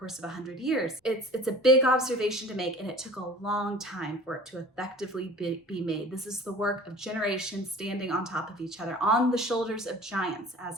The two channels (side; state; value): both; normal; correlation 0.43